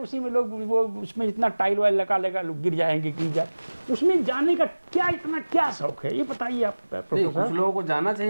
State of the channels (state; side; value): inverted; both; correlation -1.00